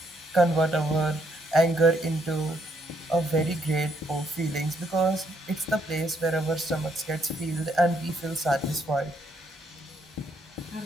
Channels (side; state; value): both; normal; correlation 0.73